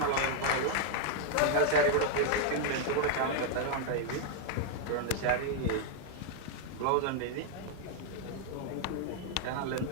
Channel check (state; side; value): different; both; correlation 0.00